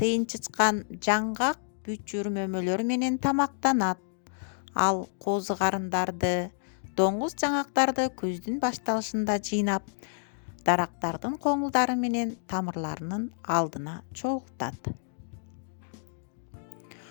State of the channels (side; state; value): right; silent; digital silence